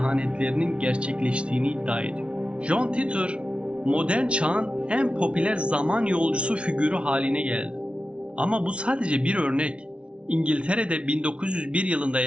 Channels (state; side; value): late; left; 0.059 ms